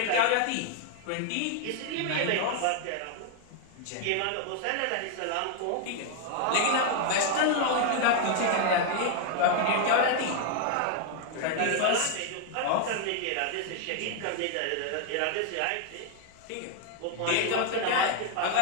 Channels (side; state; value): both; different; correlation 0.00